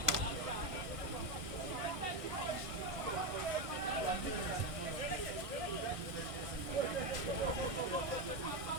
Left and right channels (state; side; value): late; left; 1.6 ms